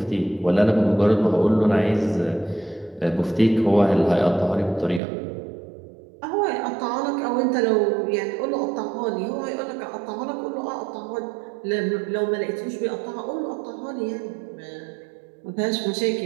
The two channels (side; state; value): left; drops out; at 5.0 s